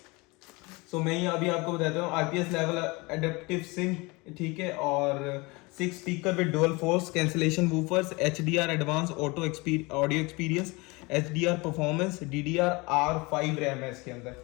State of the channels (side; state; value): right; quieter; 25.3 dB